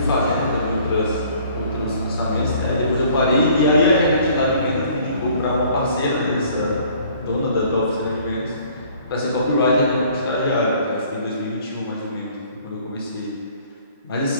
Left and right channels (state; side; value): inverted; both; correlation -0.57